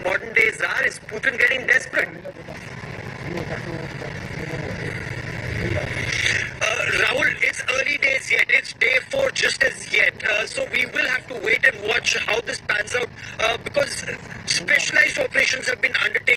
day Tsar. Is Putin getting desperate? Rahul, it's early days yet. It's day 4 just as yet. So we will have to wait and watch how this pans out, because specialized operations have been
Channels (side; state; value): both; identical; correlation 1.00